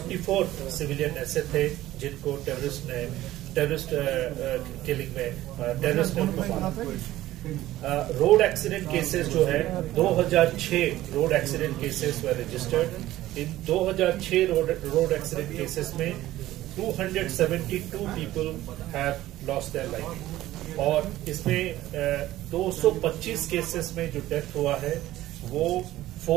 सिविलियन ऐसे थे जिनको टेररिस्ट किलिंग में टेररिस्ट ने मारा. रोड एक्सीडेंट केसेस जो है 2006 road accident cases were registered. In 2006 road accident cases में 272 people have lost their life, और इसमें 225 केसेस में जो डेथ हुआ है वो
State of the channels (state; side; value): quieter; left; 15.2 dB